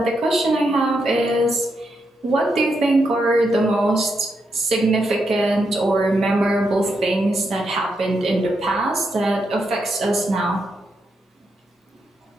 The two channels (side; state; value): both; normal; correlation 0.82